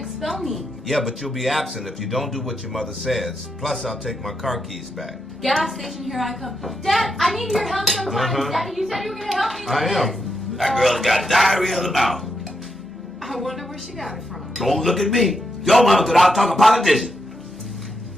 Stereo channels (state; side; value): normal; both; correlation 0.82